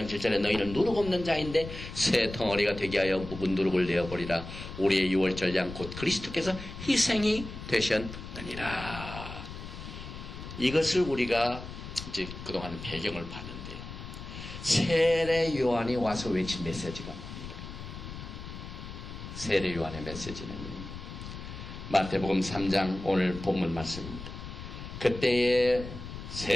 7절에 너희는 누룩 없는 자인데 새 덩어리가 되게 하여 묵은 누룩을 내어버리라. 우리의 유월절 양 곧 그리스도께서 희생이 되셨느니라. 이것을 우리가 이제 그동안 배경을 봤는데요. 세례 요한이 와서 외친 메시지가 뭡니까? 세례 요한의 메시지는요. 마태복음 3장 오늘 본문 말씀입니다. 그때에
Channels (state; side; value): noise; left; rumble, 10 dB below the sound